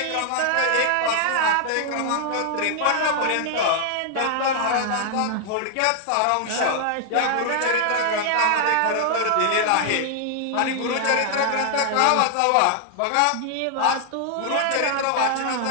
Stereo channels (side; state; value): both; different; correlation 0.00